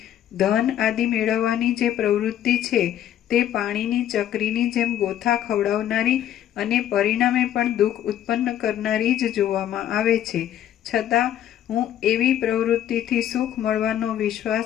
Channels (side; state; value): right; quieter; 11.2 dB